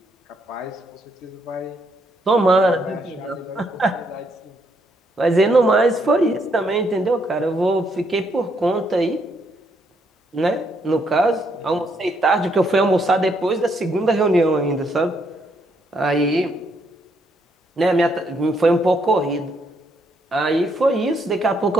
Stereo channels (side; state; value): both; normal; correlation 0.74